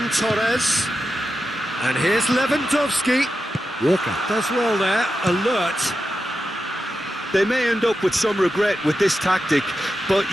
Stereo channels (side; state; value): both; normal; correlation 0.90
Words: Torres. And here's Lewandowski. Walker does well there, alert. They may end up with some regret with this tactic, but